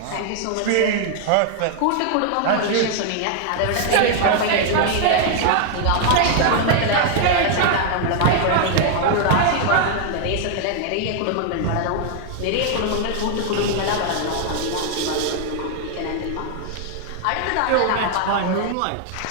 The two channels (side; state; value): both; different; correlation 0.00